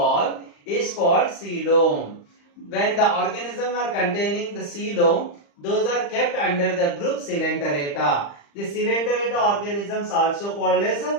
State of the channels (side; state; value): right; late; 35 ms